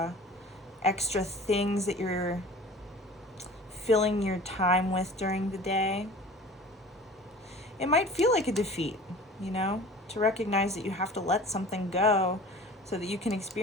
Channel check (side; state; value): both; normal; correlation 0.42